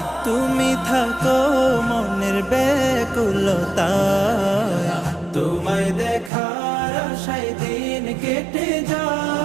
তুমি থাকো মনের ব্যাকুলতায়, তোমায় দেখার আশায় দিন কেটে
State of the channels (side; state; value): left; drops out; at 6.3 s